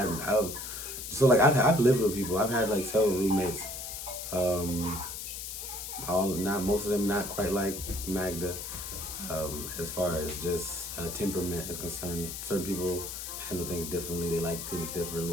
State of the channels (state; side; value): noise; left; hiss, 7 dB below the sound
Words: lived with people. I've had several roommates. Most of them not quite like Magda. As far as just temperament is concerned, certain people handle things differently. They like things